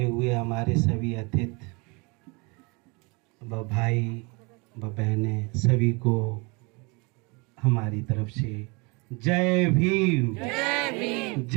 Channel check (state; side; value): quieter; left; 29.0 dB